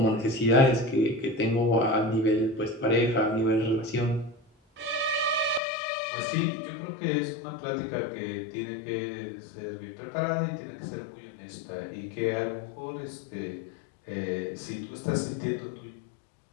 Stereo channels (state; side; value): drops out; right; at 5.6 s